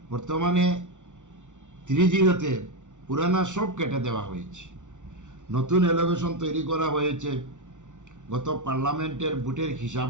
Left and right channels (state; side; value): late; left; 0.86 ms